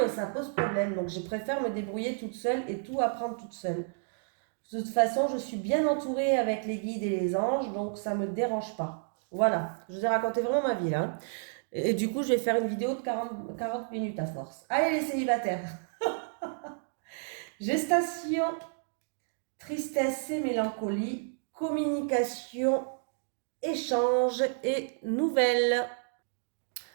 ça pose problème. Donc, je préfère me débrouiller toute seule et tout apprendre toute seule. De toute façon, je suis bien entourée avec les guides et les anges, donc ça ne me dérange pas. Voilà, je vous ai raconté vraiment ma vie là, hein. Et du coup, je vais faire une vidéo de 40 minutes à force. Allez les célibataires. Gestation, tristesse et mélancolie, communication, échange et nouvelles.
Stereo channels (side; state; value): left; silent; digital silence